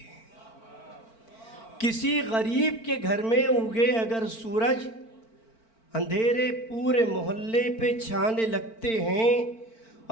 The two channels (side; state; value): right; late; 4.5 ms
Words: किसी गरीब के घर में उगे अगर सूरज, अंधेरे पूरे मोहल्ले पे छाने लगते हैं।